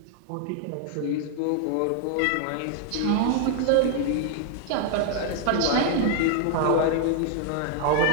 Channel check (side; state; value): both; different; correlation 0.00